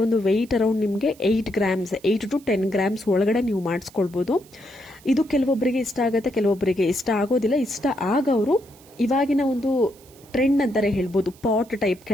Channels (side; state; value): right; noise; hiss, 26 dB below the sound